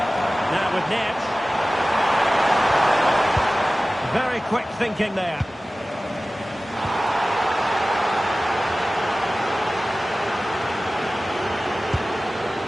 Now with Neves. Very quick thinking there.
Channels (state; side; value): normal; both; correlation 0.97